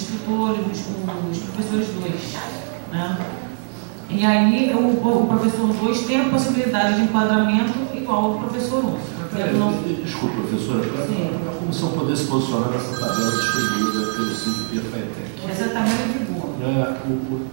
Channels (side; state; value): left; silent; 60 dB below the other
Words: os professores 2. Né? E aí o professor 2 tem a possibilidade de enquadramento igual ao professor 1. Desculpa, professora, para a comissão poder se posicionar nessa tabela distribuída pelo 5P FATEC. Essa tabela é de boa.